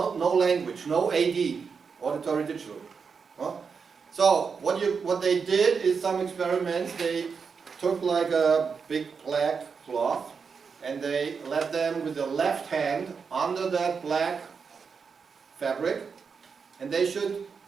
language, no AD, auditory digital. So what they did is some experiments. They took like a big black cloth and they led them with the left hand under that black fabric, and they should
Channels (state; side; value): quieter; left; 5.7 dB